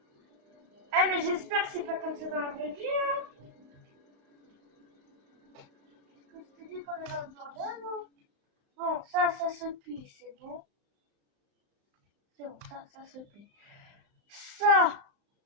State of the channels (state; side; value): late; left; 35 ms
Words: Eh, mais j'espère que c'est pas comme ça dans la vraie vie, hein. Qu'est-ce que tu dis qu'on est dans le bordel, non? Bon, ça se plie, c'est bon. C'est bon, ça se plie. Ça.